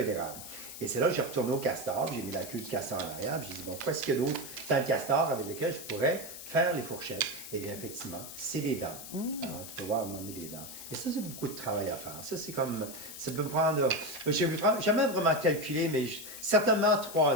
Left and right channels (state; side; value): noise; left; hiss, 11 dB below the sound